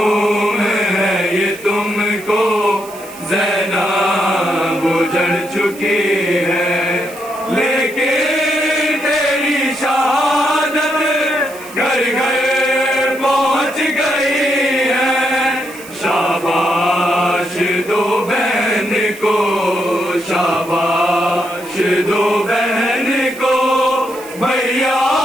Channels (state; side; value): noise; right; hiss, 19 dB below the sound